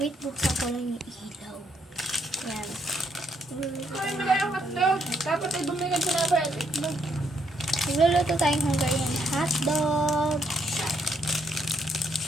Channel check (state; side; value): normal; both; correlation 0.73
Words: buksan ko lang yung ilaw. Yan. Dapat ay bumigay sa mga itlog. Magluluto tayong Hungarian hotdog.